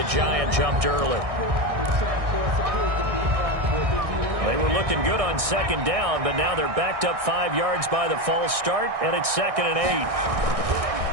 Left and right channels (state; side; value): late; left; 1.6 ms